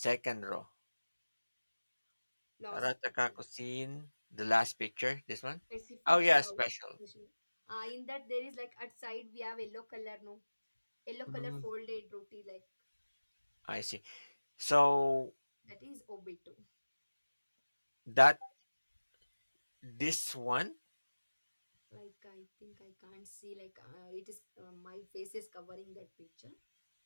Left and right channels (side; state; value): both; inverted; correlation -1.00